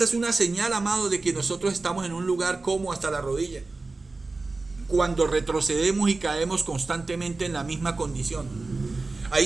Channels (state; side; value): quieter; left; 3.6 dB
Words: es una señal, amado, de que nosotros estamos en un lugar como hasta la rodilla. Cuando retrocedemos y caemos constantemente en la misma condición. Ahí